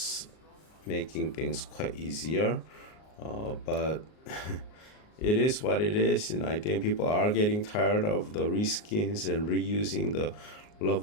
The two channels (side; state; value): right; late; 38 ms